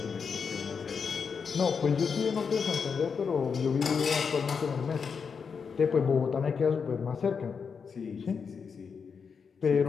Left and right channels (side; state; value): right; quieter; 6.0 dB